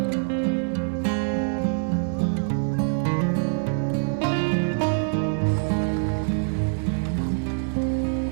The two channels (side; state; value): left; silent; 62 dB below the other